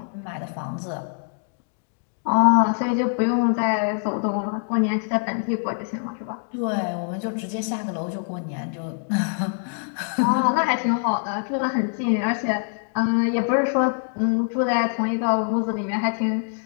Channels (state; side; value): silent; right; 62 dB below the other